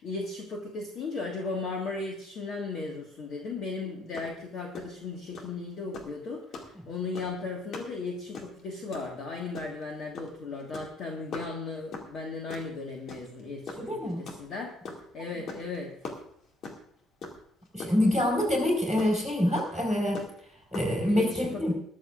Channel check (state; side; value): normal; both; correlation 0.73